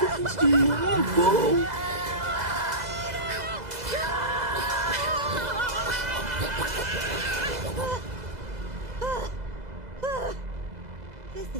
do you want, bro? This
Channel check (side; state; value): left; late; 2.0 ms